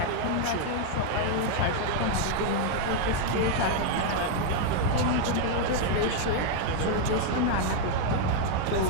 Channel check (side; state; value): both; different; correlation 0.00